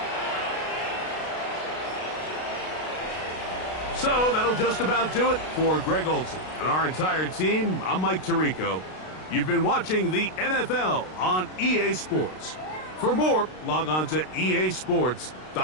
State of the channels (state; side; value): late; right; 32 ms